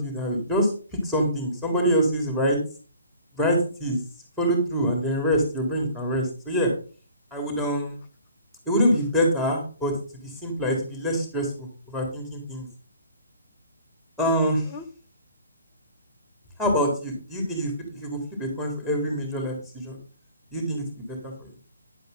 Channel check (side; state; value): both; inverted; correlation -0.48